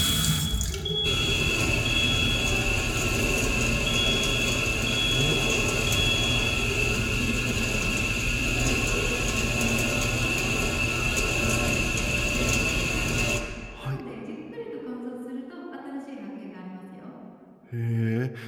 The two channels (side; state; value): both; identical; correlation 1.00